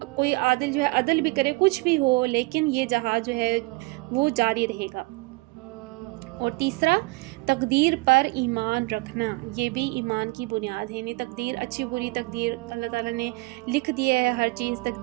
کوئی عادل جو ہے عدل بھی کرے، کچھ بھی ہو، لیکن یہ جہاد جو ہے وہ جاری رہے گا۔ اور تیسرا، تقدیر پر ایمان رکھنا، یہ بھی ایمان کی بنیاد ہے، یعنی تقدیر، اچھی بری تقدیر اللہ تعالیٰ نے لکھ دیا ہے، ہر چیز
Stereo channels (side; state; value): left; quieter; 24.7 dB